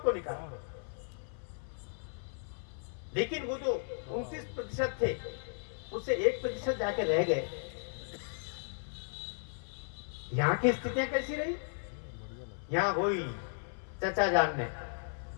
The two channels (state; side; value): silent; right; 54 dB below the other